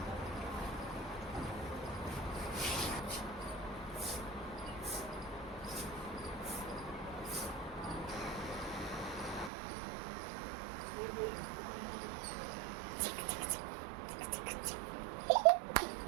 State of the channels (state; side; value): drops out; left; at 9.5 s